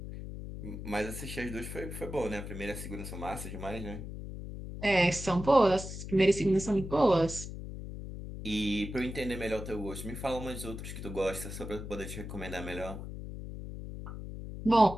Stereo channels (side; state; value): left; noise; hum, 9 dB below the sound